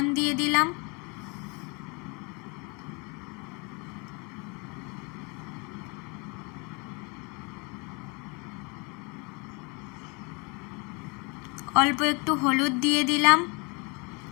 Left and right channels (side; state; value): right; quieter; 30.8 dB